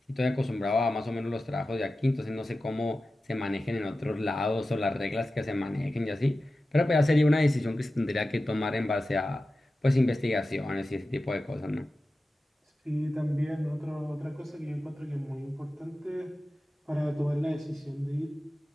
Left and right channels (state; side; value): normal; both; correlation 0.94